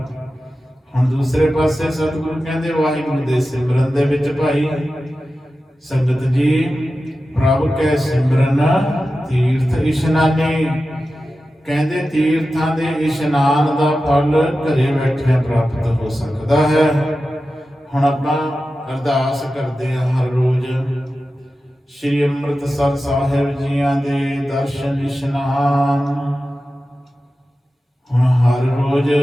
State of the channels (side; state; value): both; normal; correlation 0.93